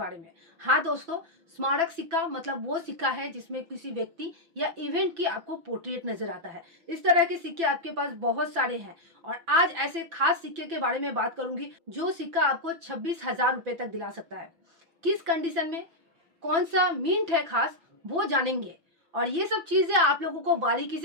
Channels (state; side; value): late; left; 6.0 ms